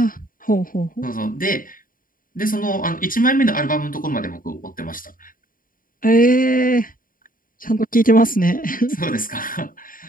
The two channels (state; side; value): late; right; 0.40 ms